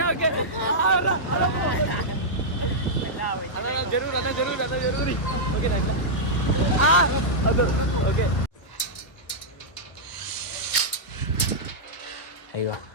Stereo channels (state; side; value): late; right; 1.3 ms